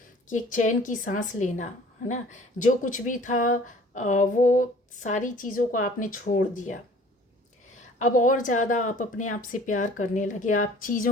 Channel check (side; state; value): both; normal; correlation 0.50